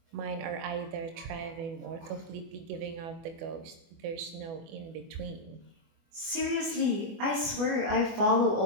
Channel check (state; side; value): late; left; 24 ms